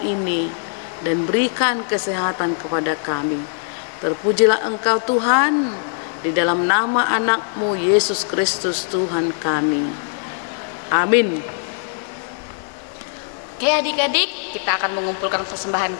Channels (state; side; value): silent; right; 65 dB below the other